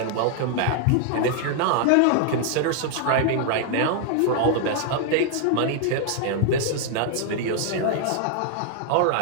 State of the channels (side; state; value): both; different; correlation 0.00